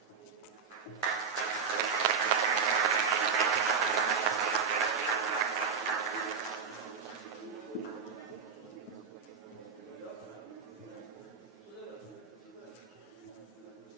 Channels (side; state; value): left; quieter; 6.0 dB